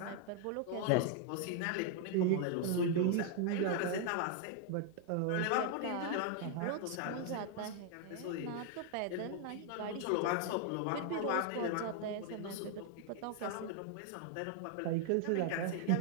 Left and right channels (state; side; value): different; both; correlation 0.00